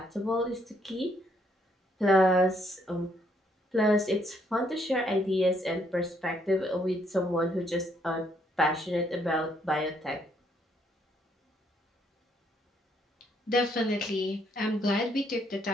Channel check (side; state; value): both; normal; correlation 0.70